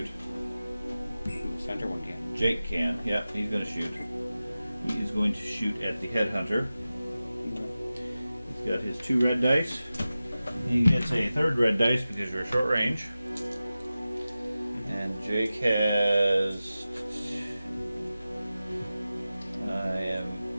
Center one can. Jake can. Yep, he's going to shoot. He is going to shoot at the headhunter. He's got his 2 red dice. He gets a 3rd red dice because you're short range. And Jake has. I am.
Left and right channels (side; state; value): both; inverted; correlation -0.95